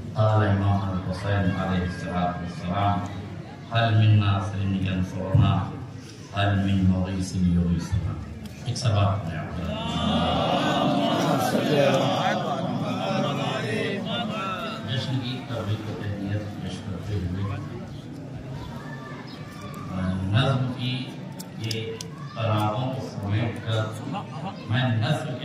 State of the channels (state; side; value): identical; both; correlation 1.00